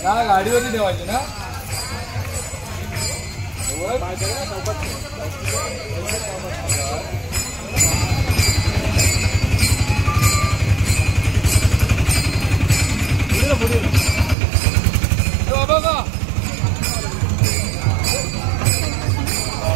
गाडीवरती ठेवायची ना बघा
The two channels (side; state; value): left; drops out; at 14.4 s